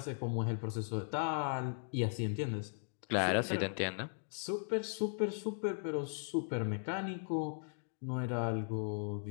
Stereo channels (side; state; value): right; silent; digital silence